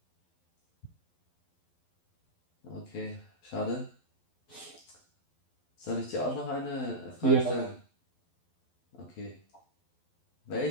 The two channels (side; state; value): right; late; 12 ms